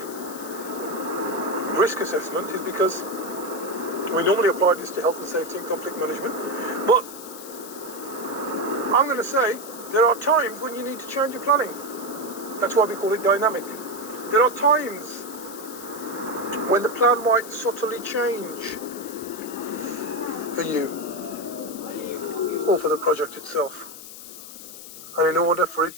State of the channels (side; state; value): left; noise; hiss, 14 dB below the sound